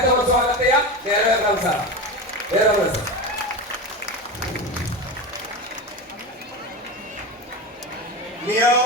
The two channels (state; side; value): normal; both; correlation 0.23